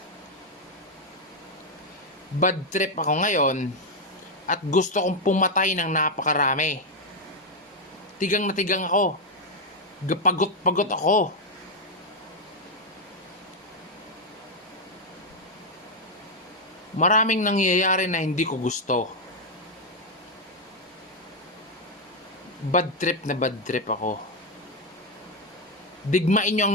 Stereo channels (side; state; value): both; normal; correlation 0.03